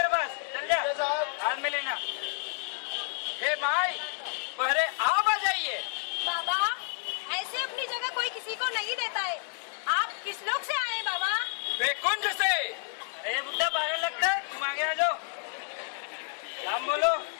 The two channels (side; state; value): right; silent; 58 dB below the other